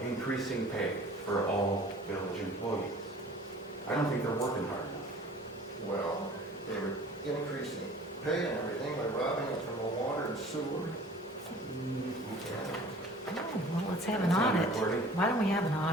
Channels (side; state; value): both; normal; correlation 0.47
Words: pay for all village employees. I don't think they're working hard enough. Well, they were increasing pay and everything by robbing it from the water and sewer. Oh, well, let's have an It's on audit. recording. Why don't we have an